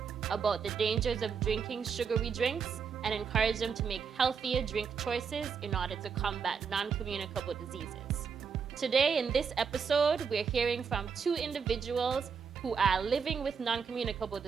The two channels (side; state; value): left; quieter; 6.2 dB